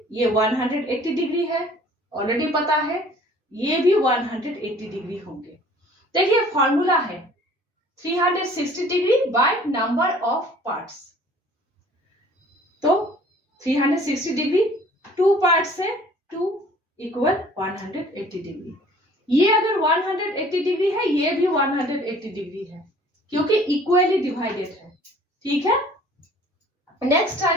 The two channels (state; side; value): normal; both; correlation 0.52